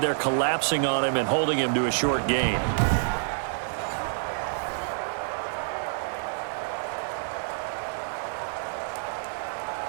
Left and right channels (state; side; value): silent; left; 60 dB below the other